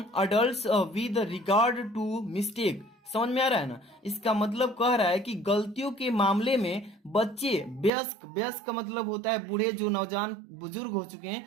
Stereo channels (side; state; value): left; drops out; at 7.9 s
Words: adult with regard to mistake. समझ में आ रहा है ना, इसका मतलब कह रहा है कि गलतियों के मामले में बच्चे वयस्क, वयस्क का मतलब होता है बूढ़े, जो नौजवान बुजुर्ग हो चुके हैं